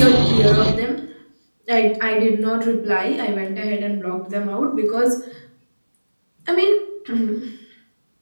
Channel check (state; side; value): inverted; both; correlation -1.00